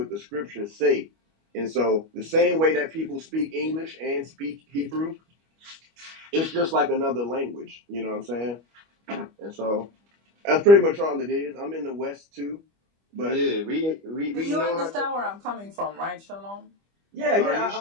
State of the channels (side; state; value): left; late; 25 ms